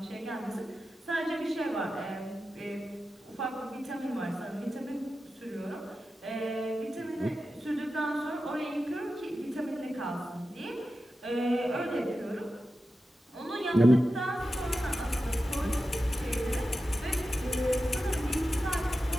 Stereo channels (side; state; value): both; normal; correlation 0.92